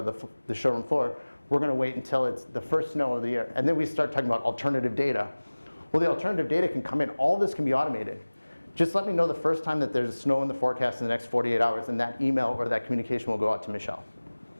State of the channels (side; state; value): both; inverted; correlation -1.00